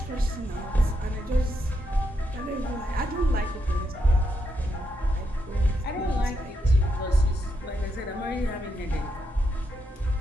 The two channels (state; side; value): normal; both; correlation 0.81